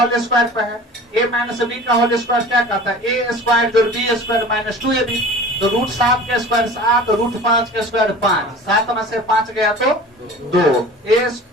स्क्वायर पे है। a माइनस बी का होल स्क्वायर क्या कहता है? a स्क्वायर जो b स्क्वायर माइनस 2ab। तो √7 के स्क्वायर 7, √5 के स्क्वायर 5। 7 में से 5 गया तो 2।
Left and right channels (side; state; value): both; normal; correlation 0.41